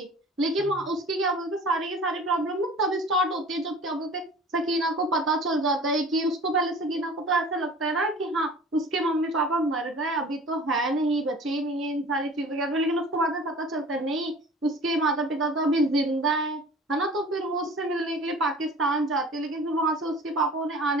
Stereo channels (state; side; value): normal; both; correlation 0.43